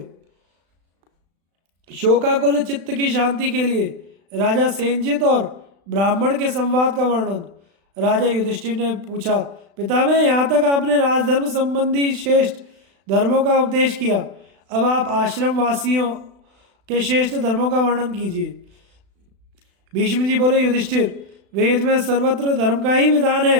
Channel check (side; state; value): left; late; 36 ms